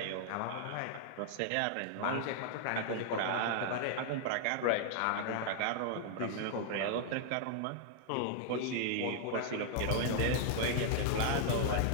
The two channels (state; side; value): different; both; correlation -0.01